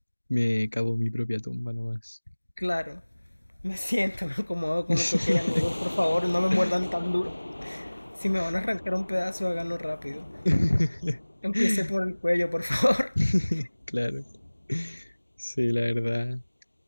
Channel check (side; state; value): both; inverted; correlation -1.00